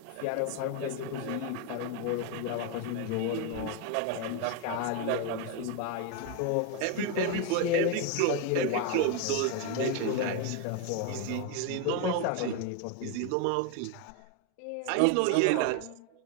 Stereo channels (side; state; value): both; different; correlation 0.01